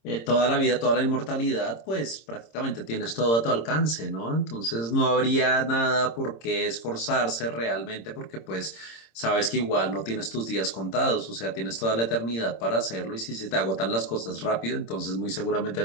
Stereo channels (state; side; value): late; right; 26 ms